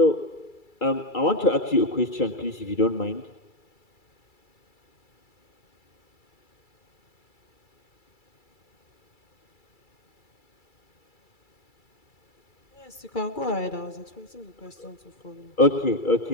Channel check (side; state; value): right; late; 2.3 ms